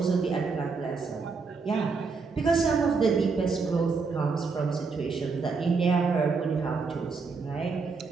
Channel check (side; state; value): left; quieter; 4.7 dB